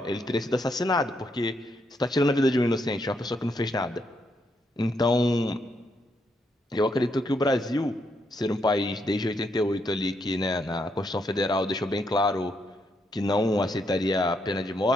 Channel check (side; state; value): both; normal; correlation 0.77